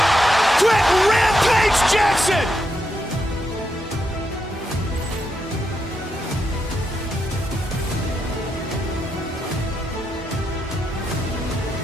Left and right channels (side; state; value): both; normal; correlation 0.83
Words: Quick Rampage Jackson.